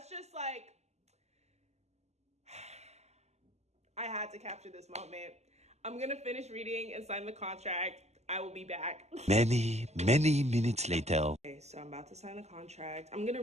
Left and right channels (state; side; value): late; left; 0.32 ms